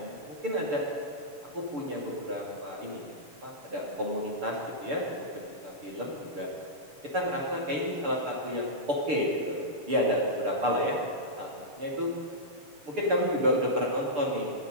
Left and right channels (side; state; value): left; late; 6.8 ms